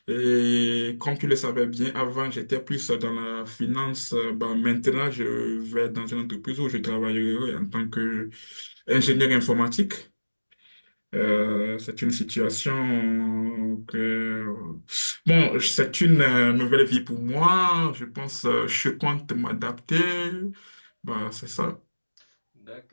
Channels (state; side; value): inverted; both; correlation -1.00